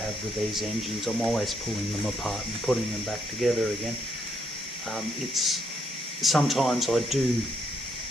with these engines, I'm always pulling them apart and putting them back together again. Sometimes I do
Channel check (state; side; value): normal; both; correlation 0.74